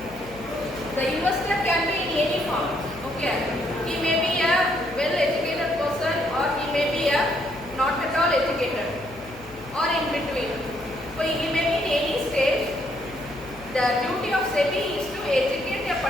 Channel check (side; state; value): left; noise; hum, 20 dB below the sound